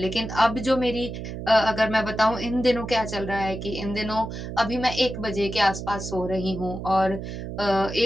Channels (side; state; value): right; noise; hum, 7 dB below the sound